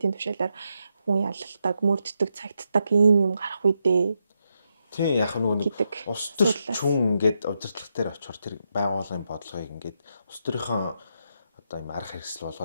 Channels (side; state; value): both; inverted; correlation -0.83